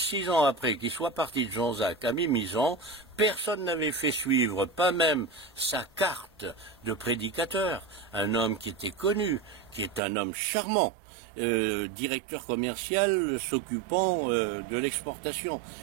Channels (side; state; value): left; drops out; at 10.0 s